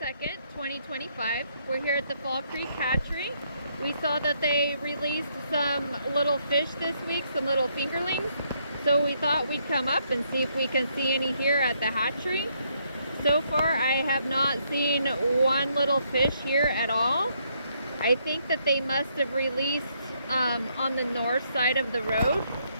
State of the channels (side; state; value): both; inverted; correlation -0.73